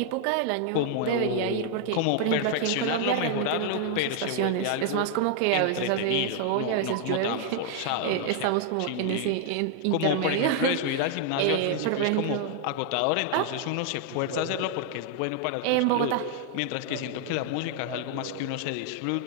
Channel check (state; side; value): different; both; correlation 0.00